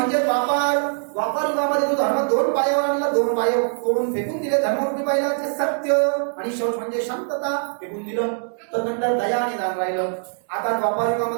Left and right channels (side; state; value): left; silent; digital silence